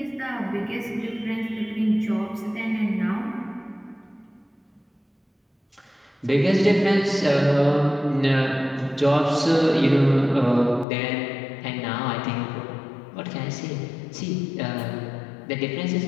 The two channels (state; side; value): drops out; right; at 10.9 s